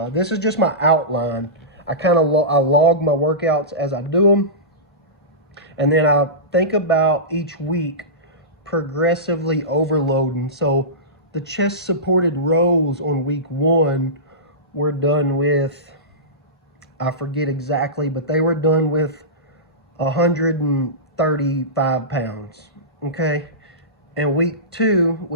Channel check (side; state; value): both; normal; correlation -0.20